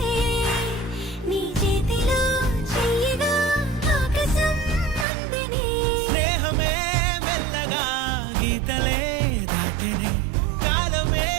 నీ చేతిలో చెయ్యగా ఆకాశం అందనే స్నేహమే మెల్లగా గీతలే దాటెనే కాలమే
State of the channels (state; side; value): drops out; left; at 5.1 s